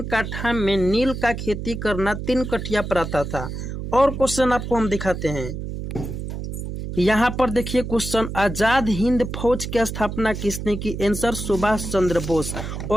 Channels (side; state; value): right; noise; hum, 6 dB below the sound